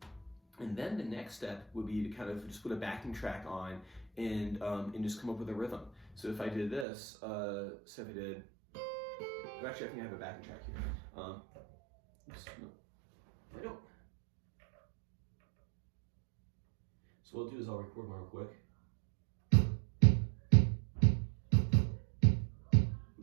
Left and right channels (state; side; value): drops out; left; at 6.9 s